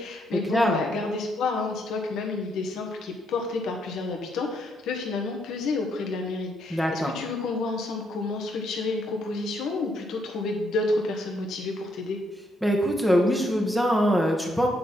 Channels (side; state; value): both; normal; correlation 0.74